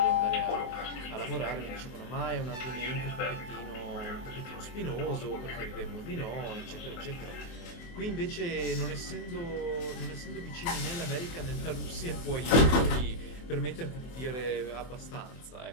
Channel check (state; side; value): late; right; 24 ms